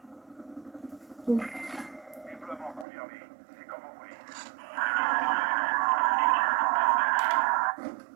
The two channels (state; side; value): drops out; left; at 2.9 s